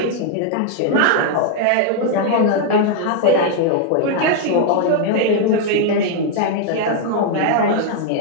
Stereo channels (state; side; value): different; both; correlation 0.00